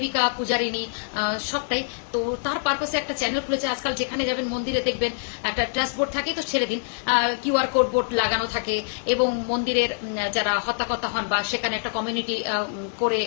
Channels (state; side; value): silent; right; 57 dB below the other